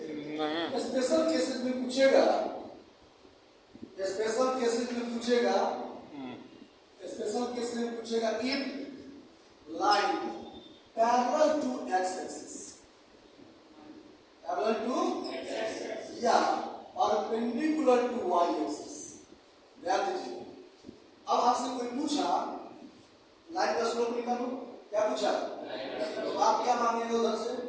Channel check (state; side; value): identical; both; correlation 1.00